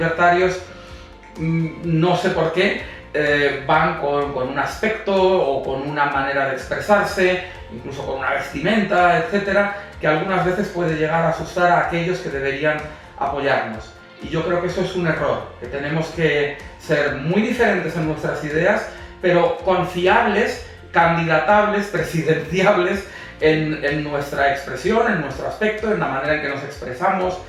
no sé por qué, van con un aspecto o con una manera de expresarse, incluso con una vestimenta, etcétera, que algunas veces puede llegar a asustar a aquellos que deberían apoyarnos. Y yo creo que eso es un error, que tenemos que ser muy diferentes en nuestras ideas, pero confiables, candidatables, presidenciables en nuestra expresión, en nuestro aspecto, en la manera en que nos expresamos,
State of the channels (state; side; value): identical; both; correlation 1.00